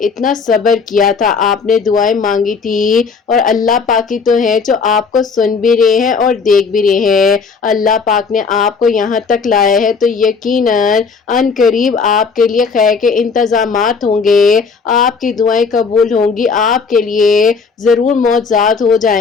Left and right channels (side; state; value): right; quieter; 5.2 dB